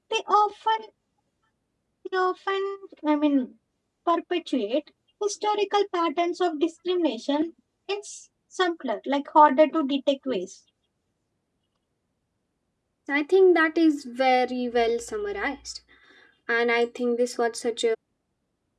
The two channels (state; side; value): identical; both; correlation 1.00